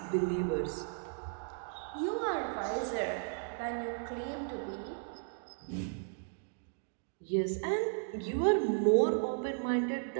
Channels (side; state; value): left; silent; digital silence